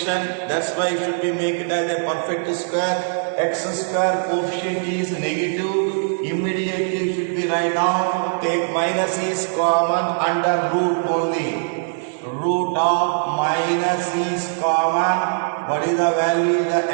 That's why it should be make it as a perfect square. X square coefficient is negative. Immediately should be write down. Take minus is common under root only. Root of minus is common. What is the value? The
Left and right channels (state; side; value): silent; left; digital silence